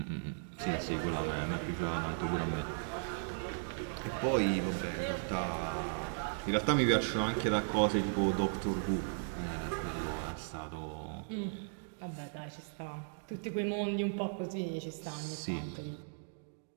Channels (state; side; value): silent; left; digital silence